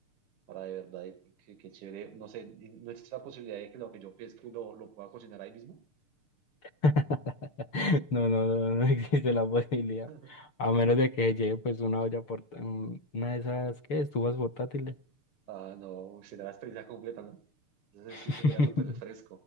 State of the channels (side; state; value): right; late; 6.7 ms